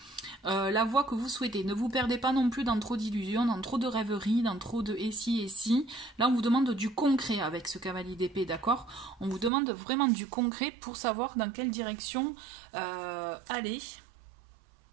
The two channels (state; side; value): drops out; left; at 9.5 s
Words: la voie que vous souhaitez. Ne vous perdez pas non plus dans trop d'illusions, dans trop de rêveries, dans trop de et si. Là, on vous demande du concret avec ce cavalier d'épée, d'accord? On vous demande vraiment du concret pour savoir dans quelle direction aller.